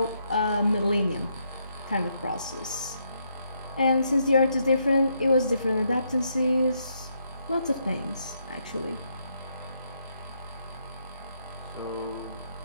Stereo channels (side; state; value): both; inverted; correlation -0.76